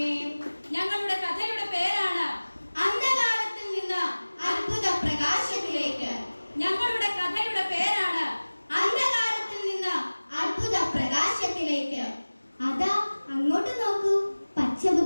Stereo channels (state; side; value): inverted; both; correlation -1.00